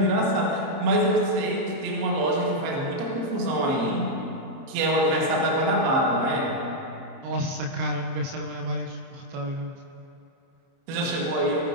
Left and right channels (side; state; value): left; late; 30 ms